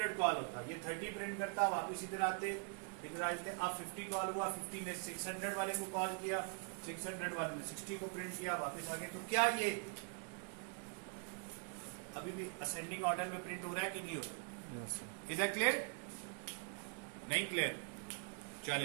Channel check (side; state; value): left; quieter; 39.4 dB